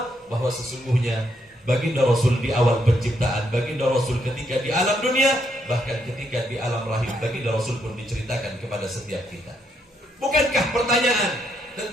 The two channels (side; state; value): both; normal; correlation 0.76